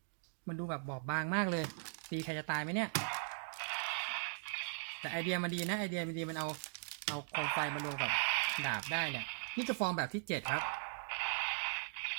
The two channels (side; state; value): left; silent; digital silence